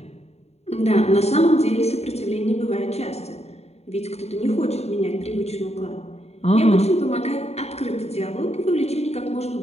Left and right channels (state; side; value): late; right; 0.31 ms